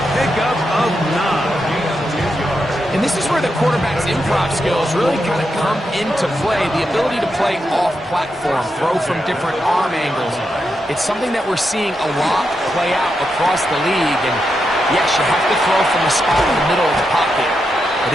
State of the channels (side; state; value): both; normal; correlation 0.85